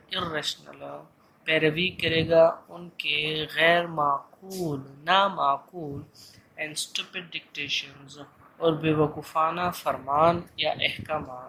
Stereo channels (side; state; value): both; identical; correlation 1.00